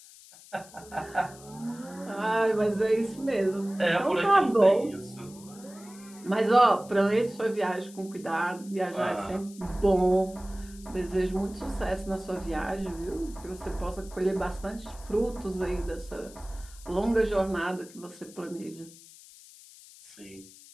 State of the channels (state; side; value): noise; left; hiss, 20 dB below the sound